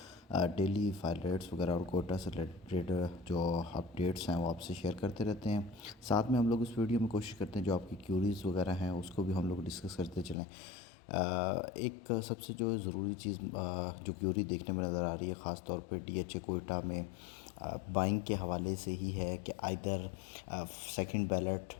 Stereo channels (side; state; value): right; drops out; at 10.4 s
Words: डेली फाइल रेट्स वगैरह और कोटा से रिलेटेड जो अपडेट्स हैं वो आपसे शेयर करते रहते हैं। साथ में हम लोग इस वीडियो में कोशिश करते हैं जो आपकी क्यूरीज़ वगैरह हैं उसको भी हम लोग डिस्कस करते चलें। एक सबसे जो ज़रूरी चीज़ जो क्यूरी देखने में नज़र आ रही है, ख़ास तौर पे DH कोयटा में बाइंग के हवाले से ही है कि आइदर सेकंड बैलेट